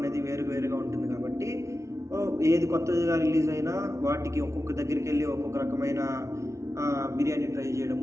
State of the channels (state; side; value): late; left; 0.14 ms